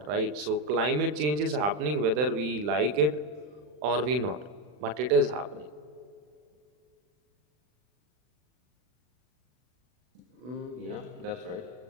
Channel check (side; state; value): left; late; 40 ms